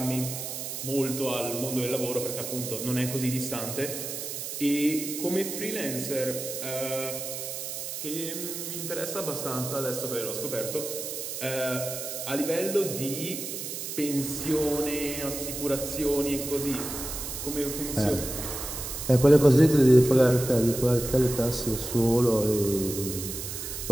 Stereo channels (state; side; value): noise; right; hiss, 6 dB below the sound